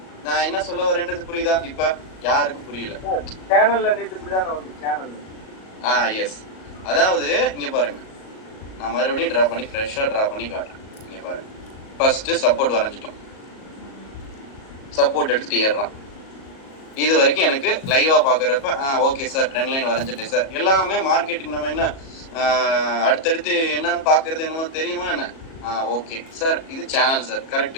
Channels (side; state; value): right; late; 37 ms